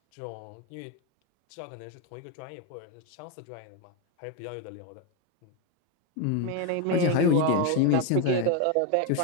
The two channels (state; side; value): different; both; correlation 0.02